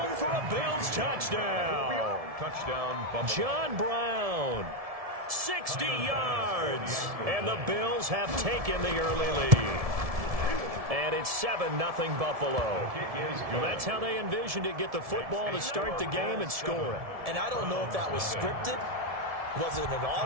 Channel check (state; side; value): late; left; 1.7 ms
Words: for a Bills touchdown. Touchdown, Buffalo. John Brown, 60 yards. And the Bills have taken the early lead. And it's 7-0 Buffalo. Well, that's how they envisioned it, get the football to start the game and score it. And I don't know if that was scripted. Was it an